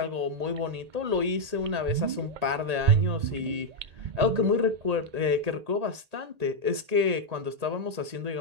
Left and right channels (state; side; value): late; left; 1.8 ms